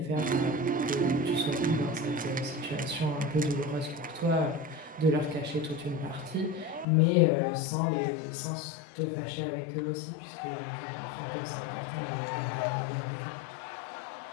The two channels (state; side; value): drops out; right; at 6.9 s